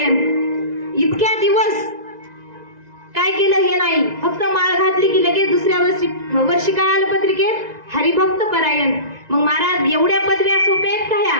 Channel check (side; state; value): left; late; 2.0 ms